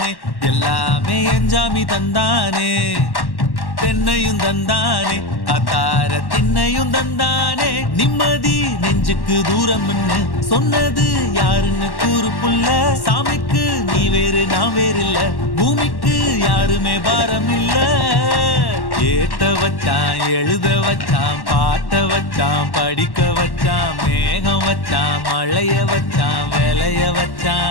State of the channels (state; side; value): late; right; 1.1 ms